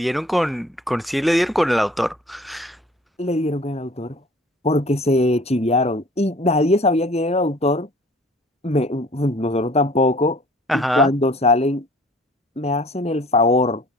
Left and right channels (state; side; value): normal; both; correlation 0.50